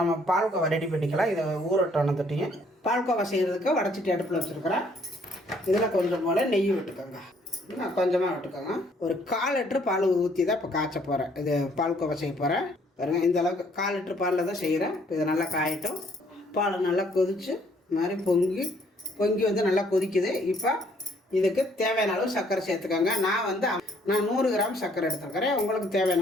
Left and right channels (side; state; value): both; normal; correlation 0.64